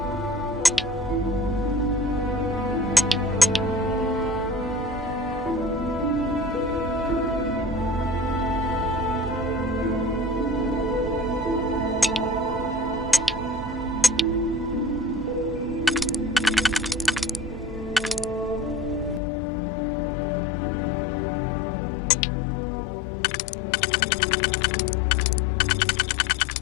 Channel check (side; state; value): right; drops out; at 19.2 s